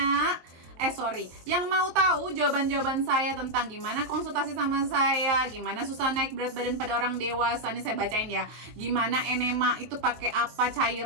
yang mau tahu jawaban-jawaban saya tentang gimana konsultasi sama saya, gimana susah naik berat badan pada orang dewasa, ini saya bacain ya. Gimana enema itu pakai apa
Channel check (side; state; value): left; late; 23 ms